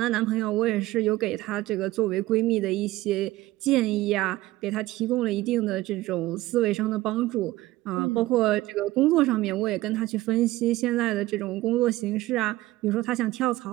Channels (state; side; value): quieter; left; 17.4 dB